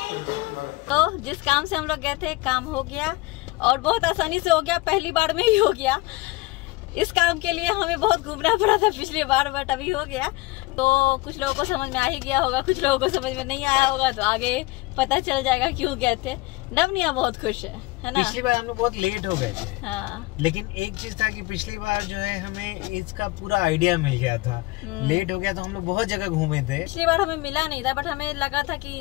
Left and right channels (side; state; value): right; quieter; 21.3 dB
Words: तो जिस काम से हम लोग गए थे काम हो गया, और बहुत आसानी से हो गया, पहली बार में ही हो गया। इस काम के लिए हमें बहुत घूमना पड़ा था पिछली बार, बट अभी हो गया। तो कुछ लोगों को समझ में आ ही गया होगा, कुछ लोगों को समझ में नहीं आया होगा, तो आगे पता चल जाएगा क्यों गए थे। नवनिया बहुत खुश है ना? पिछली बार हम लोग बहुत लेट हो गए थे। हाँ। लेकिन एक चीज था कि पिछली बार जो है हमें इसका पूरा आइडिया मिल गया था। लेट हो गया तो हम लोग बहुत जगह घूमे थे। पिछली बार हमें मिला नहीं था, बट हमें लगा था